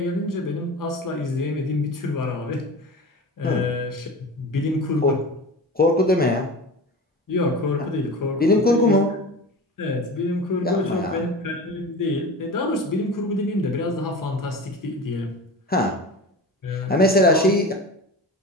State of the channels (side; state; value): both; normal; correlation 0.32